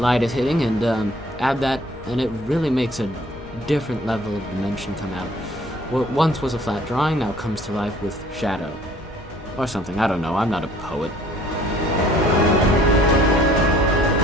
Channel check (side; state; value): both; normal; correlation 0.56